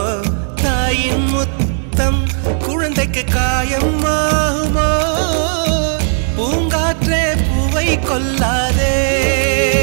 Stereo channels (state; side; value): silent; left; digital silence